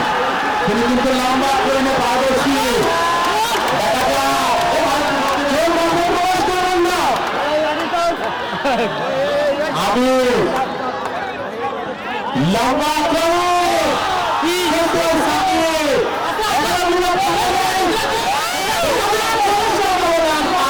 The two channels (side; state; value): both; identical; correlation 1.00